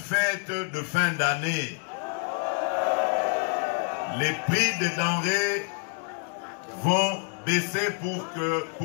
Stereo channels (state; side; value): quieter; right; 38.4 dB